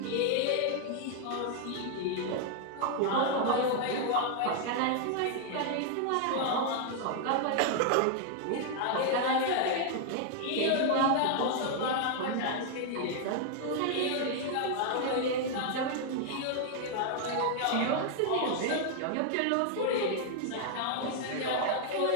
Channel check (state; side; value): different; both; correlation 0.00